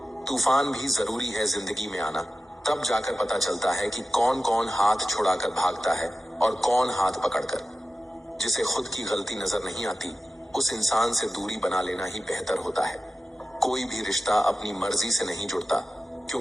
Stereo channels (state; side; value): normal; both; correlation 0.94